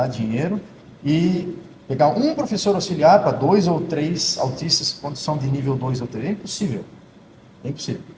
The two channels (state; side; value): identical; both; correlation 1.00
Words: dinheiro e pegar um professor auxiliar para 2 ou 3 autistas quando são de nível 2 ou 3. É impossível. É impossível.